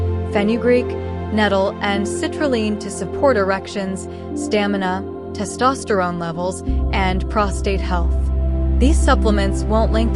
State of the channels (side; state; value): both; identical; correlation 1.00